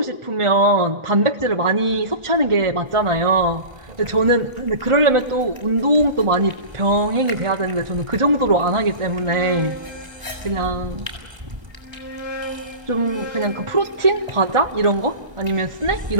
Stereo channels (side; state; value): left; late; 1.4 ms